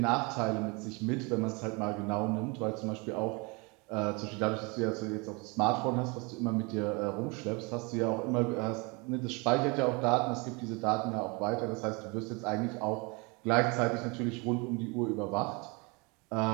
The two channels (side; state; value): left; quieter; 29.3 dB